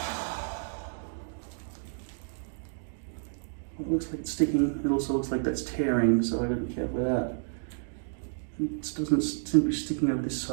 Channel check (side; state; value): left; silent; digital silence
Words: It looks like it's sticking. It also looks like that's tearing, so I gotta be careful with that. It doesn't seem to be sticking over this